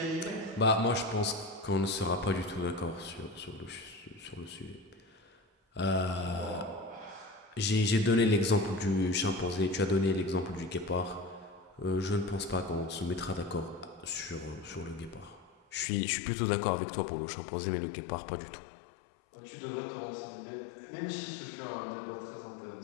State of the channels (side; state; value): right; drops out; at 15.9 s